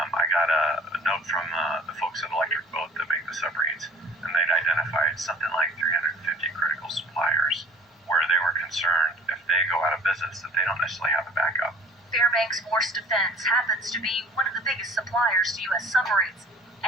got a note from the folks at Electric Boat that make the submarines, and they'd identified something like 350 critical suppliers where they were concerned if they go out of business that they don't necessarily have a backup. Fairbanks Morse Defense happens to be one of the biggest suppliers to U.S. submarines,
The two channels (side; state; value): both; normal; correlation 0.48